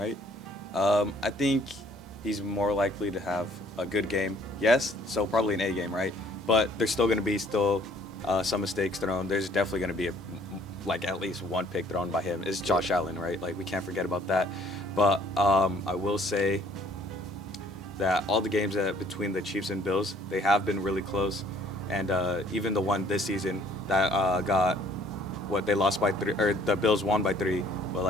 I think he's more likely to have a good game. Yes, so probably an A game, right? But there's still going to be some mistakes thrown. There's definitely going to be like at least one pick thrown by him. It's Josh Allen, right? Like we can't forget about that. But I will say that all the games between the Chiefs and Bills, they have been really close. And even the one this season that got they lost by 3, or the Bills won by 3, but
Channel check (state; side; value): normal; both; correlation 0.59